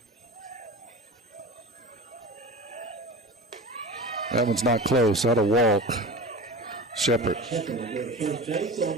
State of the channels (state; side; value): normal; both; correlation 0.32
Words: That one's not close. That'll walk. Shepard. First base